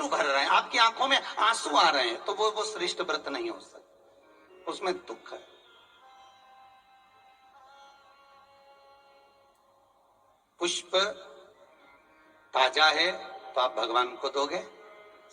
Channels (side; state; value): both; identical; correlation 1.00